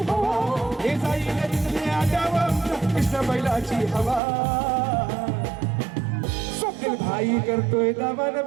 हवा हे साईला तिथले आगावा आमच्या कृष्ण बैलाची हवा स्वप्नील भाई करतोय दावा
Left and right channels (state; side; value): drops out; left; at 4.2 s